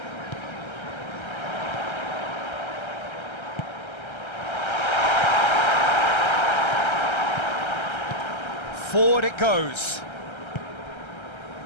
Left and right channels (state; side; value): late; right; 1.3 ms